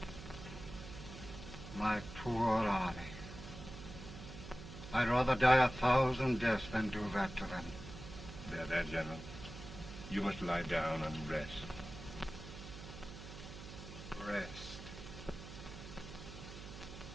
My poor army. I'd rather die 1,000 deaths than do that to them. There, General. You must lie down and rest. Rest.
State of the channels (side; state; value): right; noise; hum, 12 dB below the sound